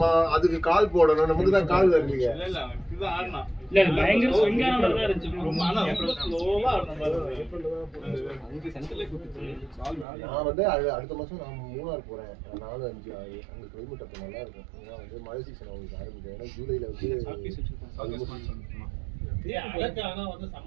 அதுக்கு கால் போடணும், நமக்கு தான் கால் வரலையே. இல்ல இதுதான் ஆடுனா இல்ல பயங்கர ஸ்விங்கான மாதிரி தான் இருந்துச்சு. ரொம்ப ஆனா ரொம்ப ஸ்லோவா ஆடுன மாதிரி அங்க சென்டர்ல குத்திச்சு. நான் வந்து அடுத்த மாசம் நான் மூணார் போறேன். 4, 5, 6 அங்க கிளைமேட் அப்ப நல்லா இருக்கும். ஏன்னா வந்து மழை சீசன் அவங்களுக்கு ஆரம்பிக்கும். ஏன்னா ஜூலைல வந்து அழகான வந்து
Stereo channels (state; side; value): drops out; left; at 10.1 s